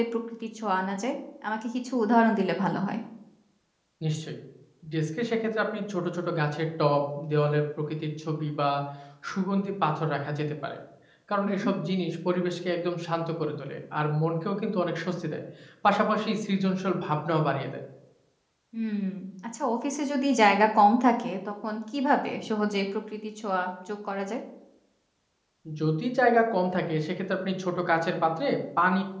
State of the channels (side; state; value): both; identical; correlation 1.00